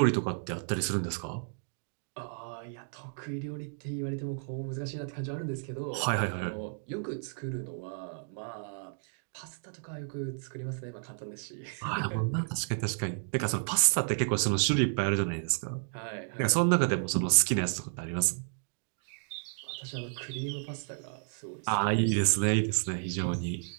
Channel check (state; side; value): silent; left; digital silence